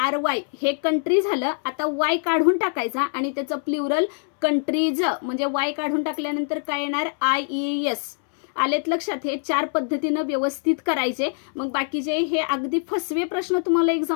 हे कंट्री झालं. आता वाय काढून टाकायचा आणि त्याचं प्ल्युरल कंट्रीज, म्हणजे वाय काढून टाकल्यानंतर काय येणार IES. आलेत लक्षात. हे 4 पद्धतीनं व्यवस्थित करायचे. मग बाकीचे हे अगदी फसवे प्रश्न तुम्हाला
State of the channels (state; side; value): silent; right; 63 dB below the other